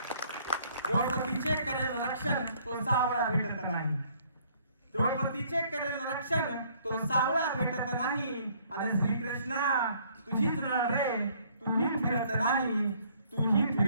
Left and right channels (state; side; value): inverted; both; correlation -0.62